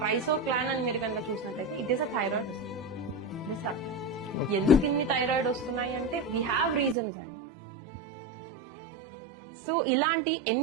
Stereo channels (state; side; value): drops out; left; at 7.0 s